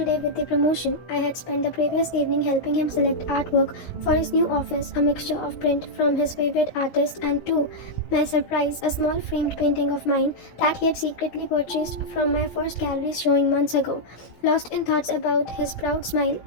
day with the promotion. I had spent the previous evening helping him select artwork for his new office, a mixture of print from his favorite artist and, to my surprise, a small framed painting of mine that he had secretly purchased from my first gallery showing months ago. Lost in thoughts about his proud smile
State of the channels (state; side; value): late; right; 16 ms